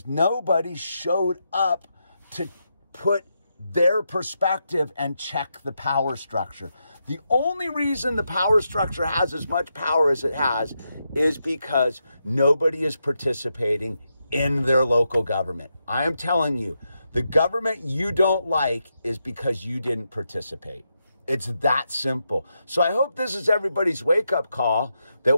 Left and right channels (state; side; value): inverted; both; correlation -0.84